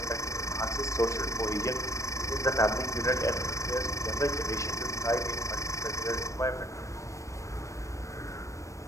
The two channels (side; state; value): right; late; 0.15 ms